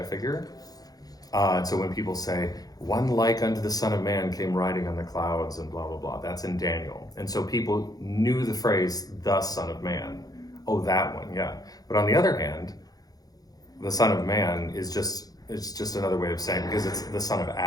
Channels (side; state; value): right; late; 0.18 ms